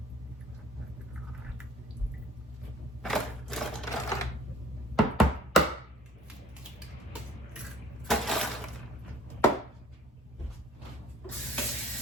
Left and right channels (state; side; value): normal; both; correlation 0.52